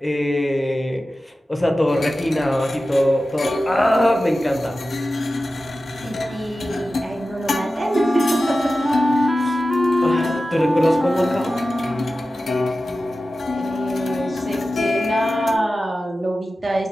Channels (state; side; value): normal; both; correlation 0.94